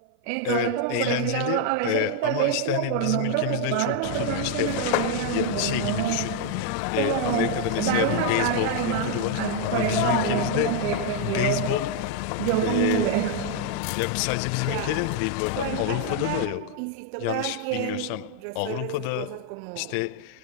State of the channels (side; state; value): both; different; correlation 0.00